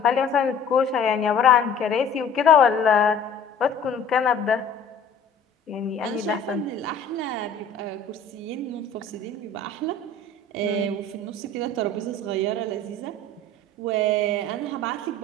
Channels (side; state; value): right; quieter; 3.6 dB